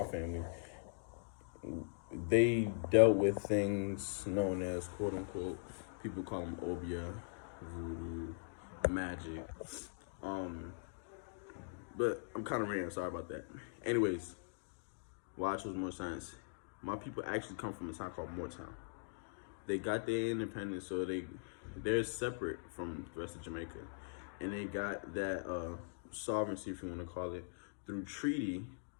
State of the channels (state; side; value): silent; right; digital silence